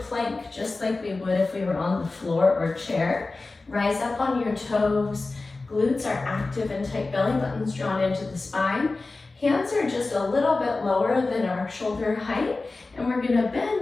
just like we would if we were on the floor or chair. Rise up on your toes. Glutes are active and tight, belly buttons drawn into the spine. Hands are just a little bit lower than our shoulder height. And we're going to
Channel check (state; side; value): quieter; right; 3.5 dB